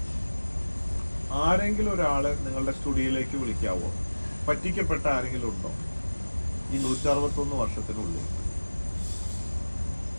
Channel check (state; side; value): inverted; both; correlation -1.00